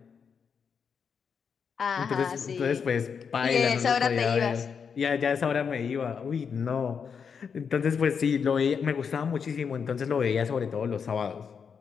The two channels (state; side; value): quieter; right; 6.5 dB